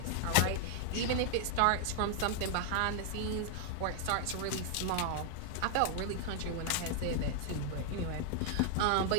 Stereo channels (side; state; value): both; different; correlation 0.00